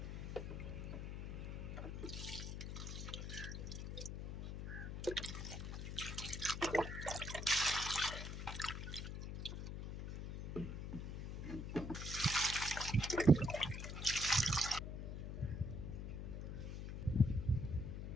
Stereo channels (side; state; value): left; noise; hum, 5 dB below the sound